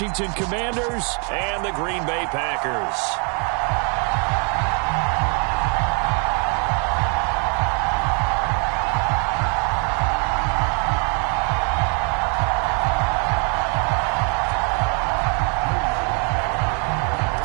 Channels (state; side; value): quieter; left; 38.3 dB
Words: Commanders and the Green Bay Packers.